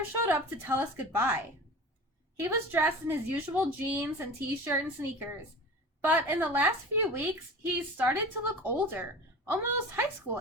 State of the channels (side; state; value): both; normal; correlation 0.35